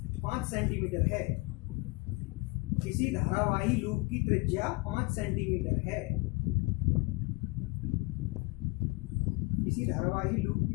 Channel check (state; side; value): quieter; right; 25.8 dB